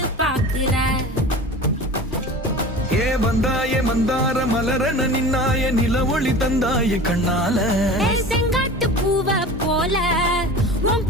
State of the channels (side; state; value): both; normal; correlation 0.36